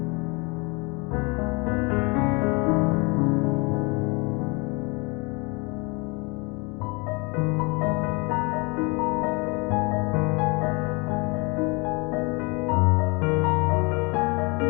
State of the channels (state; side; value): quieter; right; 29.1 dB